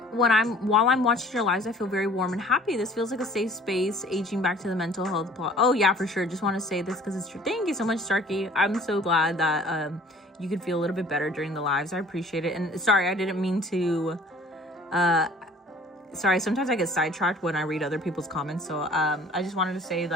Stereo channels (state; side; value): normal; both; correlation 0.51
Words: While I'm watching your lives, I feel very warm and happy. This feels like a safe space, aging back to the mental health plot. Oh yeah, for sure. Just want to say this because it's true. Thank you so much, Starkey. I'm so glad that you could feel a little bit better during the lives. I appreciate it. And sorry, I didn't mean to. Sorry, sometimes I get sidetracked when I read other people's comments. So I just wanted to say